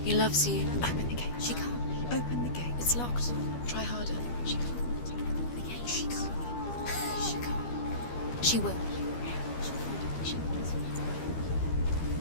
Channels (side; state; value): right; late; 13 ms